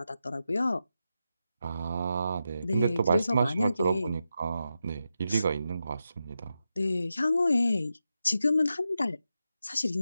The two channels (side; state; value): both; inverted; correlation -0.88